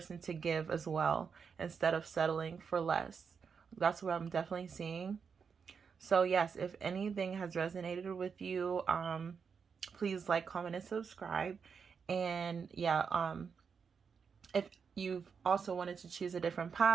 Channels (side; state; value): left; quieter; 6.1 dB